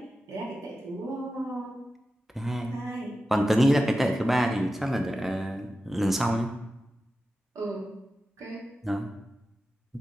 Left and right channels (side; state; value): both; normal; correlation 0.93